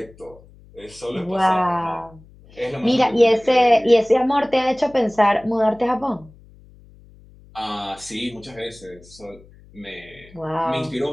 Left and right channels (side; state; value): left; noise; hum, 24 dB below the sound